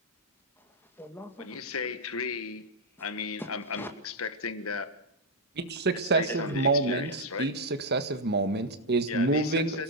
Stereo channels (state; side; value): normal; both; correlation -0.01